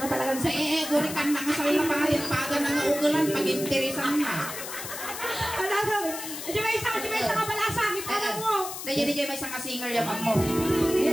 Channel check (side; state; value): left; noise; hiss, 8 dB below the sound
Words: nga talagang Sa guri kan na nga sa lapahin, paga na nga ugulan, pag-interesan na. Ano gawin? Di ba isa ka balasa, kita na mo. Dahil may isang singer yaman mo.